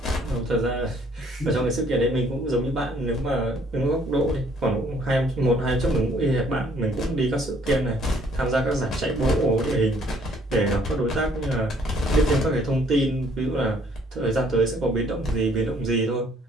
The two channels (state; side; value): normal; both; correlation 0.62